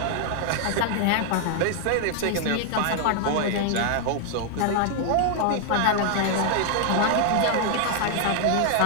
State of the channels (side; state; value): both; different; correlation 0.00